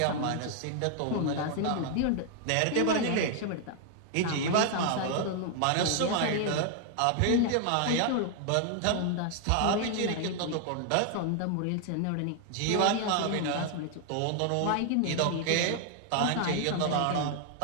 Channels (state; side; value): different; both; correlation 0.00